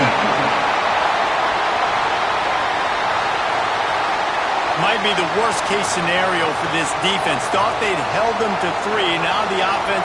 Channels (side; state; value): both; identical; correlation 1.00